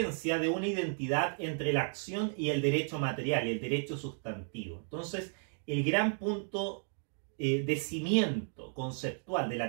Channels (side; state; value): left; silent; 55 dB below the other